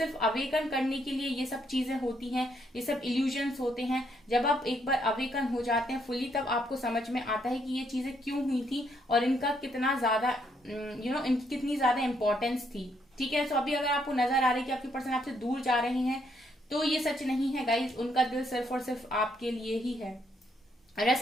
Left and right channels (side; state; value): both; normal; correlation 0.73